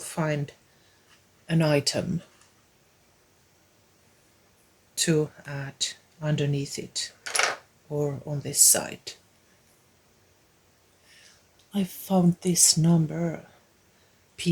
an item to add underneath it or on this side. I found this number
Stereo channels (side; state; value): both; identical; correlation 1.00